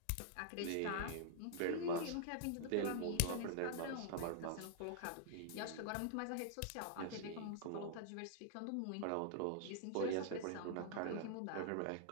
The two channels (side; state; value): both; different; correlation -0.01